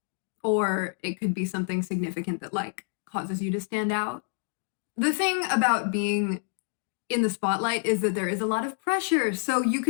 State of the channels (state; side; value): silent; right; 58 dB below the other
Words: Or it could be something significant that like causes you to stand out. The thing about being in the spotlight is that there is a lot of pressure. So you